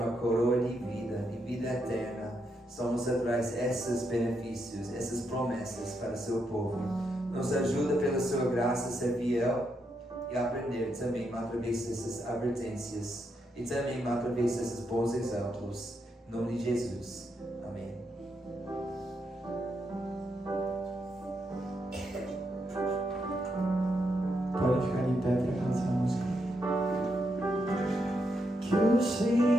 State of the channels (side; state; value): both; normal; correlation 0.81